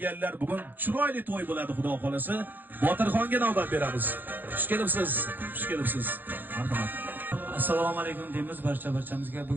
Bugun chiroyli to'y bo'ladi, xudo xolasa. Botirxonga navbat beramiz. Xush kelibsiz. Marhamat. Assalomu alaykum deymiz barchamizga.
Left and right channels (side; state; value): left; late; 0.090 ms